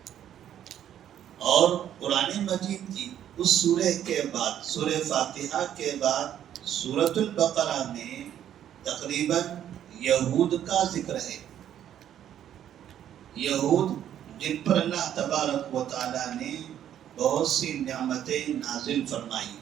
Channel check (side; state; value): left; quieter; 10.5 dB